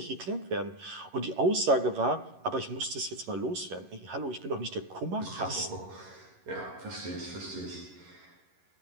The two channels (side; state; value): left; late; 11 ms